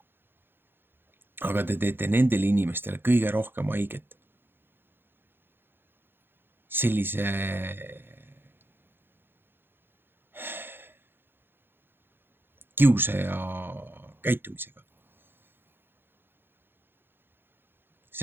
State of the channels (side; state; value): left; late; 0.10 ms